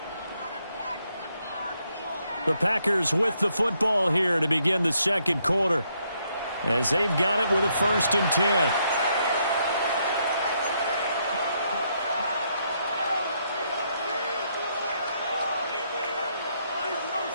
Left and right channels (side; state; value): both; inverted; correlation -0.75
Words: The Packers with the football here to begin the second quarter, as they've got it with a first and 10.